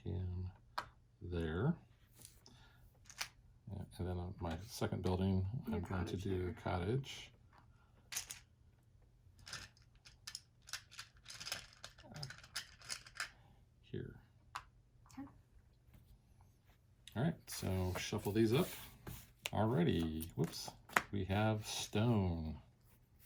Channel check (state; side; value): identical; both; correlation 1.00